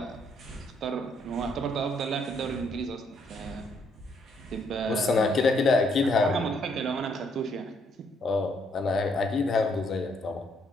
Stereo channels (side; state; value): both; normal; correlation 0.70